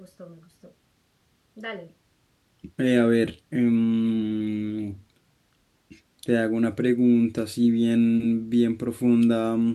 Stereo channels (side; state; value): both; identical; correlation 1.00